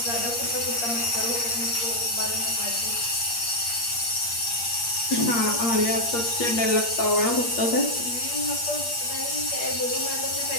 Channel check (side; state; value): right; late; 8.5 ms